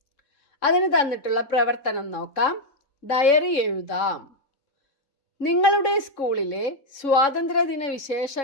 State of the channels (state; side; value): late; right; 3.6 ms